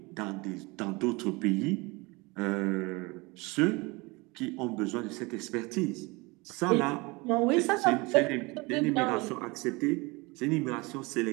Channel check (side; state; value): left; quieter; 25.3 dB